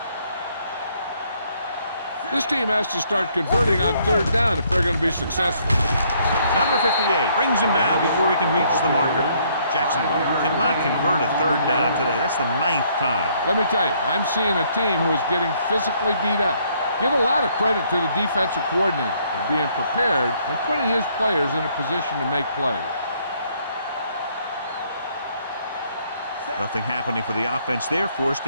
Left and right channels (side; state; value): both; inverted; correlation -0.67